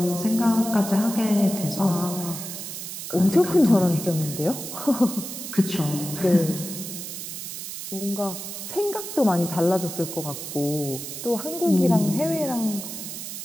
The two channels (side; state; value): right; noise; hiss, 8 dB below the sound